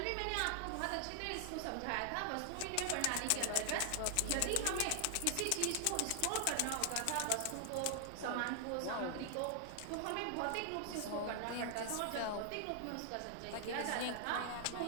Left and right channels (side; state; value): both; different; correlation 0.00